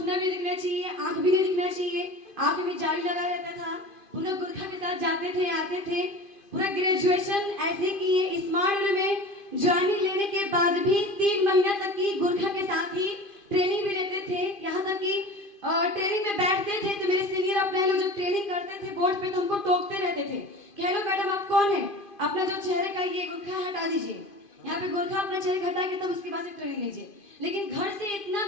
भी दिखना चाहिए, आंख भी नहीं दिखना चाहिए, आंख में जाली लगा रहता था। पूरा गुरखा के साथ जाते थे, आते थे। पूरा ग्रेजुएशन ऐसे किए। स्मार्ट में ज्वाइनिंग लेने के बाद भी 3 महीना तक की गुरखा के साथ ही ट्रेनिंग भी लेते थे। यहाँ तक कि ट्रेनिंग में बैठते थे तो मेरे सीनियर अपने लोग जब ट्रेनिंग करते थे बोर्ड पे तो हमको टोकते रहते थे कि हेलो मैडम, आप कौन है? अपना जो चेहरे का ये गुरखा हटा दीजिए। यहाँ पे गुरखा अपना चेहरे हटा के तब उसके बाद से ट्रेनिंग लीजिए। लेकिन घर से इतना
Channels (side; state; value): right; late; 2.5 ms